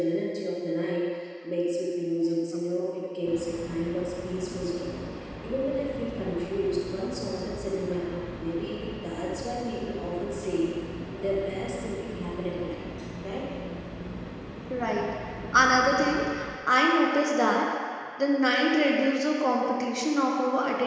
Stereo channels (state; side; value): identical; both; correlation 1.00